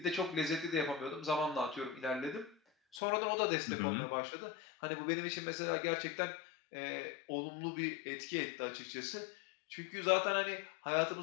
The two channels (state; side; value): drops out; right; at 3.0 s